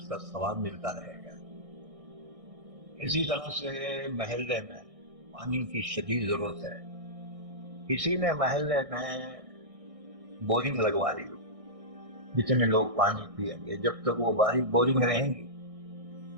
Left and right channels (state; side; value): late; left; 1.6 ms